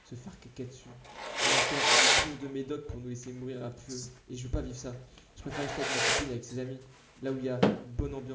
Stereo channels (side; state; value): both; identical; correlation 1.00